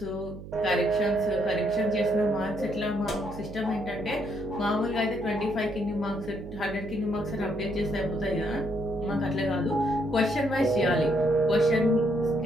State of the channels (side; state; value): right; noise; hum, 13 dB below the sound